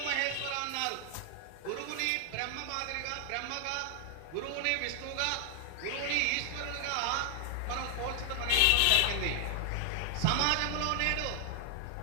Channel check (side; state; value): both; different; correlation 0.00